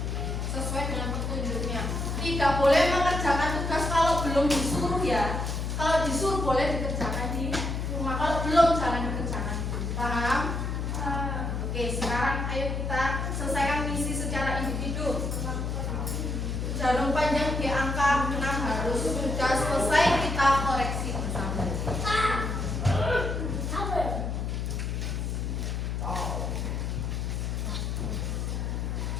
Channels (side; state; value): left; noise; hum, 2 dB below the sound